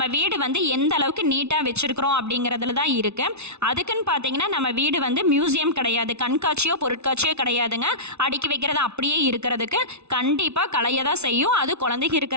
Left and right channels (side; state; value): left; late; 0.81 ms